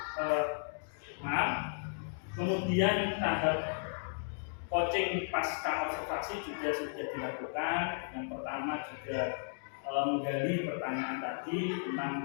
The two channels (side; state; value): right; silent; digital silence